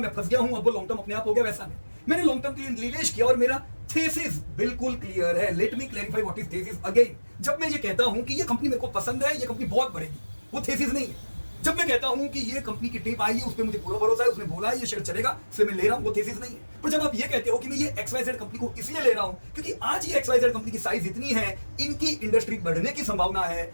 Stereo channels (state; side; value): inverted; both; correlation -1.00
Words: फंस गया हूं, अब वो लॉन्ग टर्म अपने आप हो गया, वैसा नहीं। मैंने लॉन्ग टर्म के लिए निवेश किया और मेरा थीसिस बिल्कुल क्लियर है। Let me clarify what is thesis again. जब मैं ये कहता हूं कि ये कंपनी मेरे को पसंद है, ये कंपनी बहुत बढ़ेगी, वो थीसिस नहीं है। जब मैं कहता हूं कि ये कंपनी की टिप आई है, उस पर मुझे पूरा भरोसा है, उसने बोला है ये शेयर चलेगा, इसलिए मैं ले रहा हूं, वो थीसिस नहीं है। पर जब आप ये कहते हो कि मैं ये XYZ कंपनी को इसलिए ले रहा हूं क्योंकि आज ये XYZ कंपनी की साइज इतनी है, इनकी इंडस्ट्री बढ़ने की संभावना है,